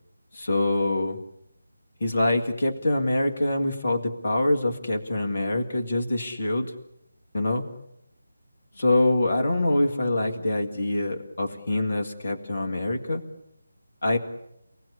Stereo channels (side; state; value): both; inverted; correlation -0.92